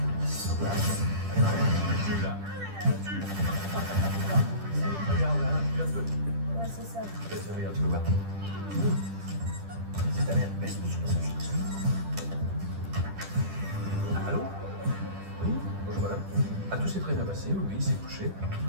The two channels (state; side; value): late; left; 10 ms